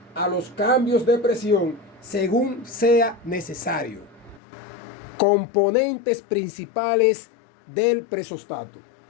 a los cambios de presión según sea necesario. Componentes principales del presostato.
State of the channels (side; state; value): right; drops out; at 4.4 s